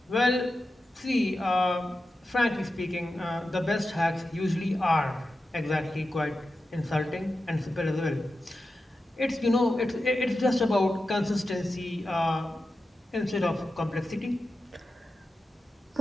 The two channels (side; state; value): both; normal; correlation 0.91